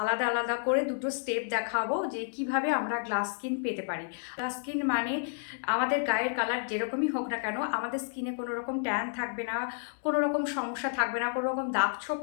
আলাদা আলাদা করে দুটো স্টেপ দেখাবো যে কিভাবে আমরা গ্লাস স্কিন পেতে পারি। গ্লাস স্কিন মানে আমাদের গায়ের কালার যেরকমই হোক না কেন, আমাদের স্কিনে কোনো রকম ট্যান থাকবে না, কোনো রকম সমস্যা থাকবে না, কোনো রকম দাগ ছোপ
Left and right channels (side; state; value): right; silent; 57 dB below the other